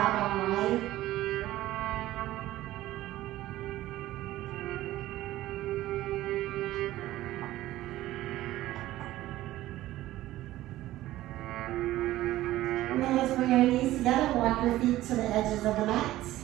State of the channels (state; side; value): quieter; left; 15.5 dB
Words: out wide. And then let's bring our knees together, walk your feet to the edges of the mat.